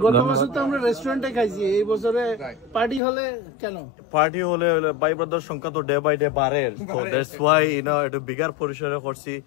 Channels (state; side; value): drops out; right; at 3.0 s